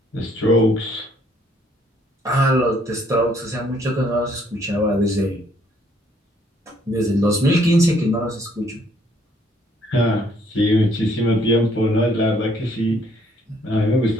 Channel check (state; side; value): normal; both; correlation 0.65